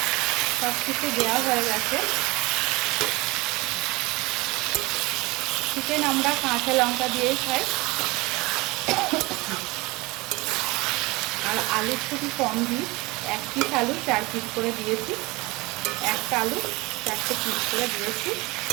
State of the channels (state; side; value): quieter; left; 23.1 dB